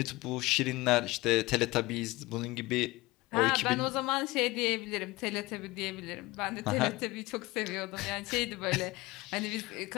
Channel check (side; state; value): right; quieter; 21.2 dB